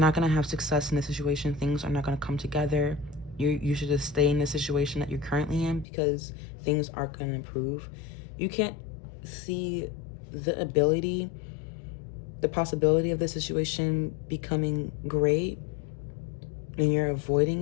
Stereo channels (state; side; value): drops out; right; at 5.9 s